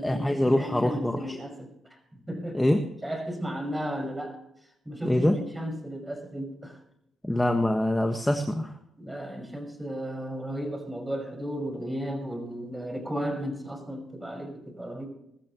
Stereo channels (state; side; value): normal; both; correlation 0.94